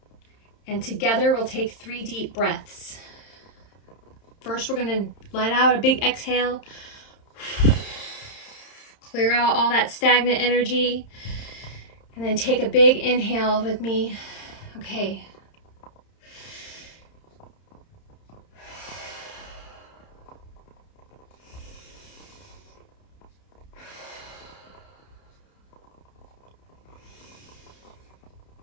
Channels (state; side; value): late; right; 31 ms